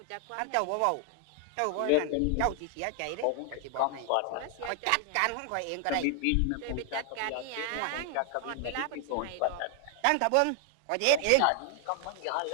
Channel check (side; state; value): both; different; correlation 0.00